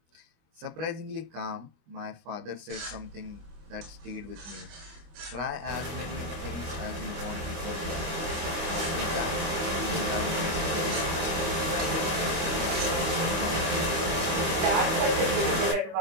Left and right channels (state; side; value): late; left; 25 ms